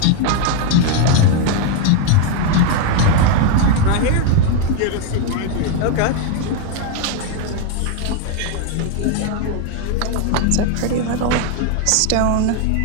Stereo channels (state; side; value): different; both; correlation 0.01